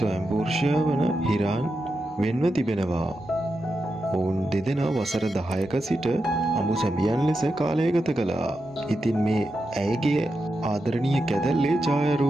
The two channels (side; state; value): both; normal; correlation 0.88